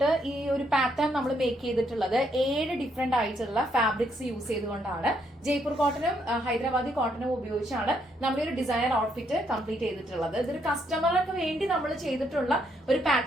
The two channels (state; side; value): normal; both; correlation 0.74